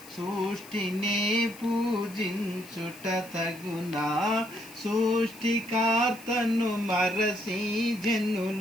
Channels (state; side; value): noise; left; hiss, 19 dB below the sound